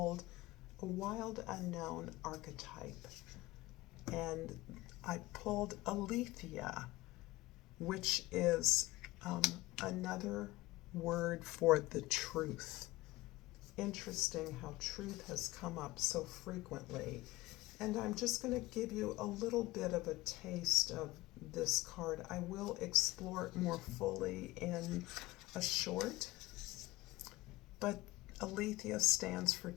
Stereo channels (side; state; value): right; quieter; 19.4 dB